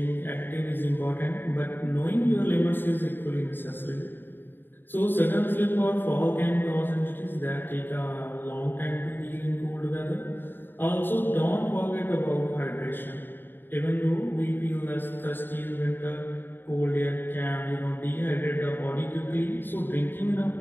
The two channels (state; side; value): late; right; 0.096 ms